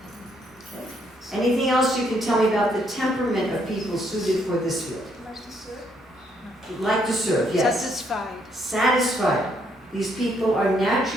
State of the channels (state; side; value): normal; both; correlation 0.72